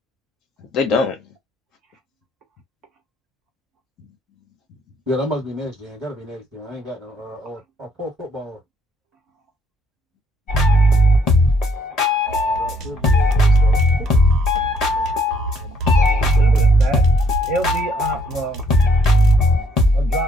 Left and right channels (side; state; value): both; normal; correlation 0.68